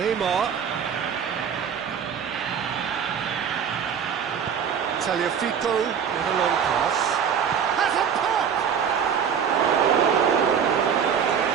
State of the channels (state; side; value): quieter; left; 7.6 dB